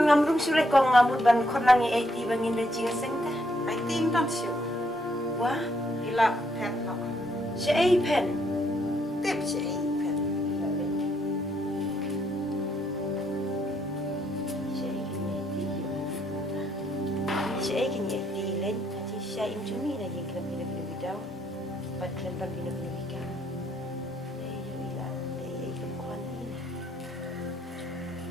ngam rung sure kong ngamut ban khot langi IT bangin le jinga sing ta. IT tan siu. Wah, Ila pet no. si ai pen. Tip si pet. Si ai kini IT len, nanti si ai cumi na yang kena bidau. Pat kena bina ka. Yo ila, kong kwan ni.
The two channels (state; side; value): normal; both; correlation 0.73